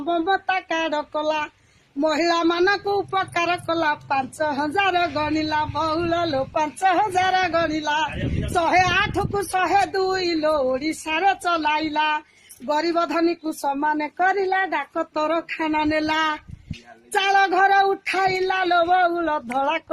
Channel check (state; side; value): identical; both; correlation 1.00